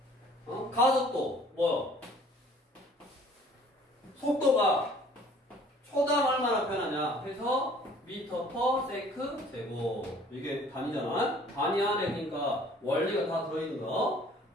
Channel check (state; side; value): normal; both; correlation 0.54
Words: 가속도 뭐요? 속도가 초당 얼마나 변하냐 해서 미터 퍼 세크 제곱. 이게 단위잖아. 단위 안에 그러니까 원리가 다 들어있는 거